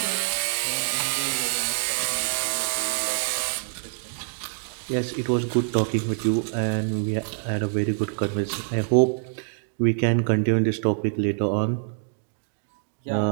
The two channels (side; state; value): left; silent; digital silence